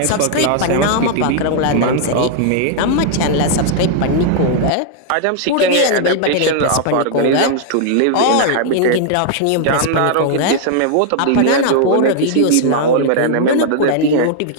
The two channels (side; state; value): both; different; correlation -0.01